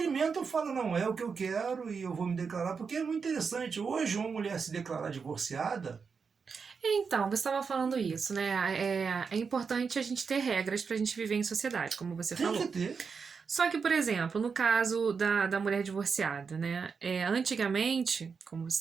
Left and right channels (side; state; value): left; quieter; 5.6 dB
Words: e falam, não é o que eu quero e eu vou me declarar, porque é muito interessante. Hoje, uma mulher se declarar divorciada... Então, você estava falando isso, né? É importante a gente ter regras para a gente viver em sociedade, como você falou. Tem que ter. Só que, por exemplo, no caso da mulher divorciada, né? Antigamente, como